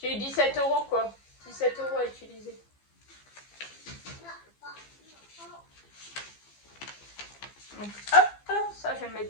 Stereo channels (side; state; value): right; late; 15 ms